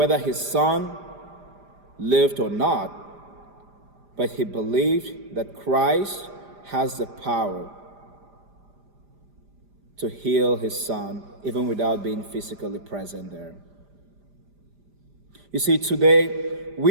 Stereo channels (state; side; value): late; left; 5.0 ms